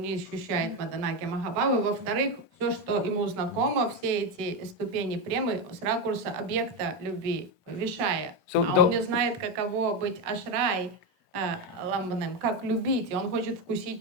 не ощущает Маданākhya-mahābhāva, во-вторых, все, что ему знакомо, все эти ступени премы с ракурса объекта любви, Вишая. Он не знает, каково быть Ашрай ламбанем, как любить, и он хочет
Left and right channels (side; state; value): both; normal; correlation 0.11